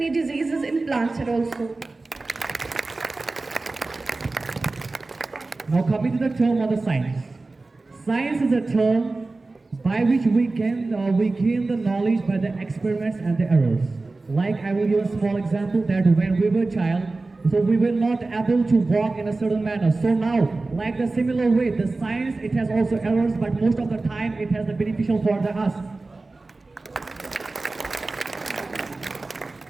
diseases in plants also. Now coming to the term of the science. Science is a term by which we gain the knowledge by the experiments and the errors. Like I will give a small example that when we were child, so we were not able to walk in a certain manner. So now, like the similar way, the science, it has also errors, but most of the time it has the beneficial for us.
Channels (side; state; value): left; quieter; 3.4 dB